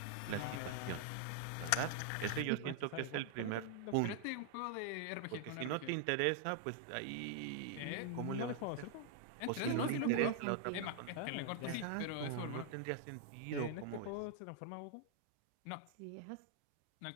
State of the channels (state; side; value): different; both; correlation 0.00